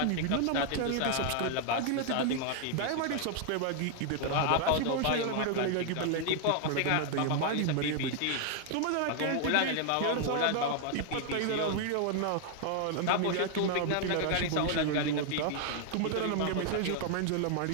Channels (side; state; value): both; different; correlation 0.00